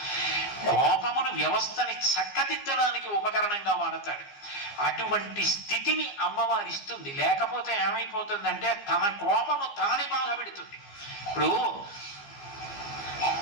కోపమును వ్యవస్థని చక్కదిద్దడానికి ఉపకరణంగా వాడతాడు. అటువంటి స్థితిని అమ్మవారు ఇస్తుంది. లేకపోతే ఏమైపోతుందంటే తన కోపము తాని బాధ పెడుతుంది. ఇప్పుడు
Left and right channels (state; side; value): late; right; 15 ms